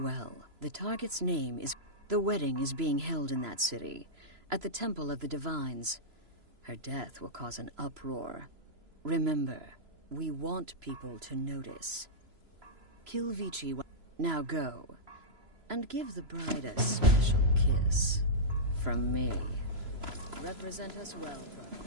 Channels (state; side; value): late; left; 3.0 ms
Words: The target's name is... The wedding is being held in that city, at the Temple of the Divines. Her death will cause an uproar. Remember, we want people to notice. Kill Vici. Now go, and give the bride a special kiss. From me. Represent us well, brother.